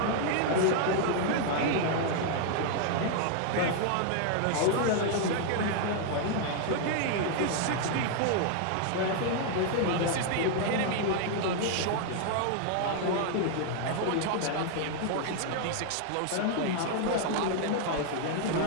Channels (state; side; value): different; both; correlation 0.00